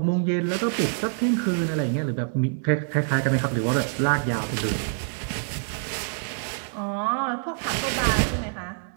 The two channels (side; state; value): left; silent; digital silence